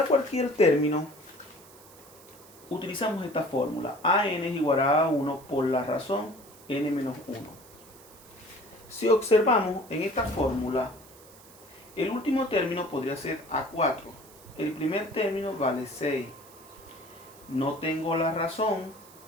cualquier término, utilizamos esta fórmula. AN es igual a A1 por la razón n menos 1. Si observamos en esta fórmula, el último término podría ser A4. El primer término vale 6. No tengo la razón.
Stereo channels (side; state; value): right; noise; hiss, 22 dB below the sound